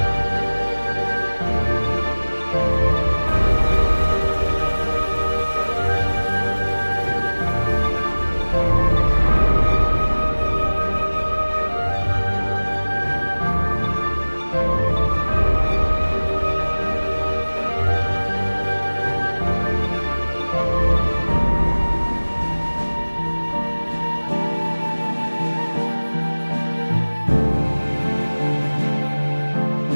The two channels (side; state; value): both; inverted; correlation -1.00